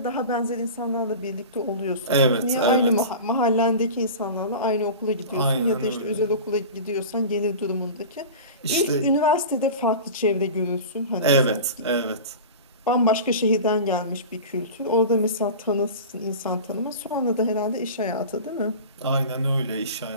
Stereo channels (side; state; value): both; inverted; correlation -0.33